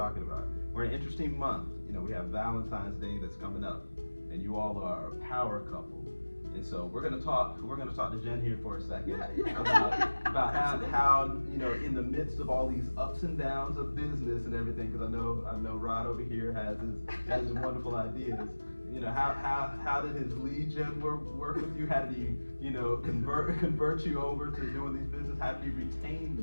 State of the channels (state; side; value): inverted; both; correlation -1.00